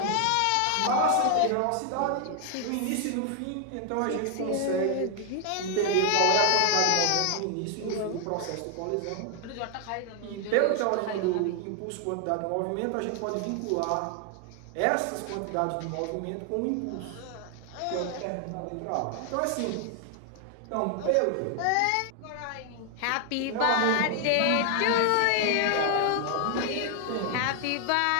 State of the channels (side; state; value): both; different; correlation 0.00